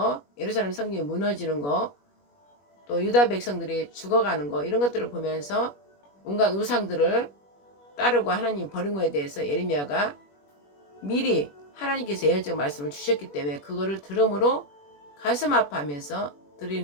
예루살렘 성경이 무너지는 거, 또 유다 백성들이 죽어가는 거 이런 것들을 보면서 온갖 우상들을 따르고 하나님 버린 거에 대해서 예레미야가 미리 하나님께서 예언적 말씀을 주셨기 때문에 그거를 들음으로 가슴 아파하면서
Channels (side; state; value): right; late; 21 ms